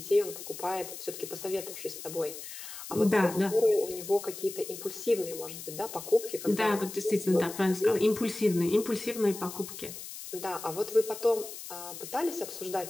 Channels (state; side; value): noise; left; hiss, 11 dB below the sound